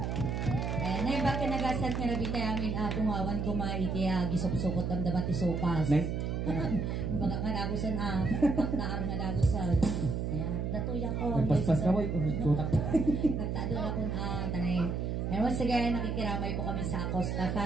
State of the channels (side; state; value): right; noise; hum, 1 dB below the sound